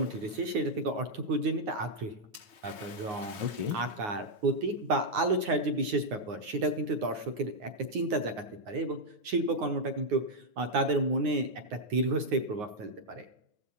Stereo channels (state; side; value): late; left; 9.6 ms